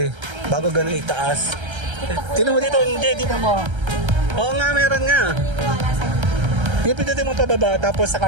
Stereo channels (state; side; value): late; left; 1.3 ms